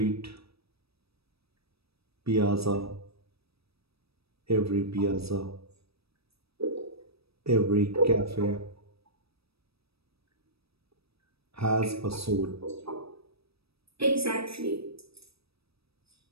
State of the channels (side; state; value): left; late; 0.77 ms